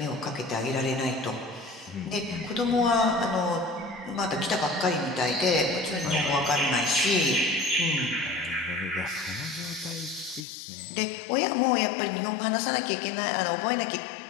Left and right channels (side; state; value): right; drops out; at 10.5 s